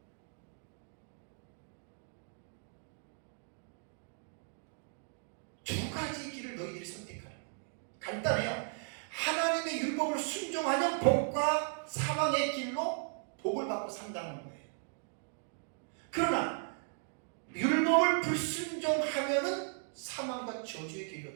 두 가지 길을 너희들이 선택하는 거예요. 간단해요. 하나님의 율법을 순종하면 복과 사망의 길로 복을 받고 산다는 거예요. 그러나 율법을 불순종하면은 사망과 저주의 길로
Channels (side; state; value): left; silent; 53 dB below the other